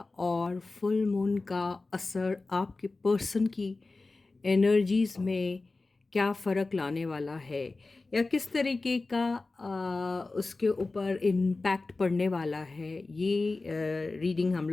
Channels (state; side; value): quieter; right; 3.5 dB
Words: और फुल मून का असर आपके पर्सन की एनर्जीज़ में क्या फ़र्क लाने वाला है या किस तरीके का उसके ऊपर इम्पैक्ट पड़ने वाला है, ये रीडिंग हम